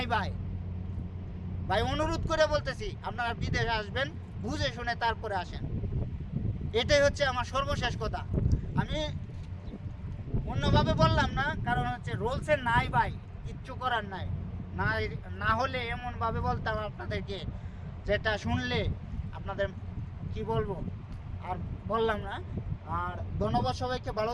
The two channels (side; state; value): both; identical; correlation 1.00